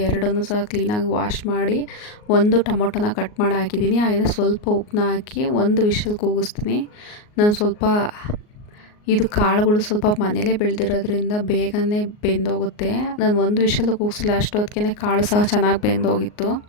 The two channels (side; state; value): right; late; 38 ms